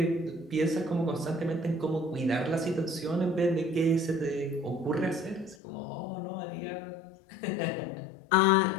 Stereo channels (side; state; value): right; drops out; at 5.6 s